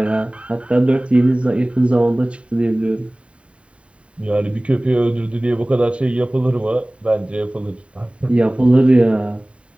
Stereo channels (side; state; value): left; late; 0.061 ms